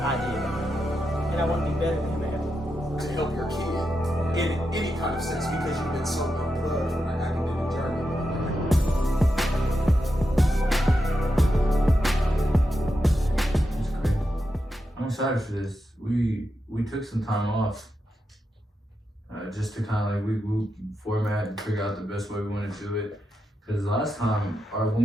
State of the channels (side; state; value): both; normal; correlation 0.87